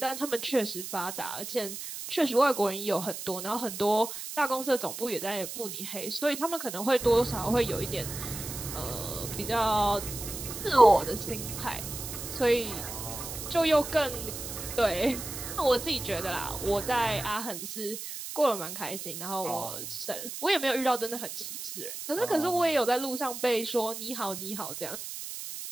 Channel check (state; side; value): noise; right; hiss, 8 dB below the sound